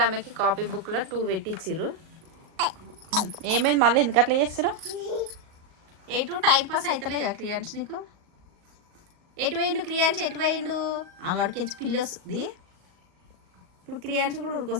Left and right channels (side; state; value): left; late; 38 ms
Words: ఆమెకి కాపీ బుక్లో 2 పెట్టించారు. ఏమైంది మళ్ళీ ఎందుకు అట్లా చేస్తారు? ఎటు టైం పాస్ అవుతలే కదా క్రియాంశ్ నీకు? ఎటు పోయిండు క్రియాంశ్? ఎటు పోయిండు? అడికెళ్ళి పిల్లి వస్తుంది. ఇప్పుడు క్రియాంశ్ కూడా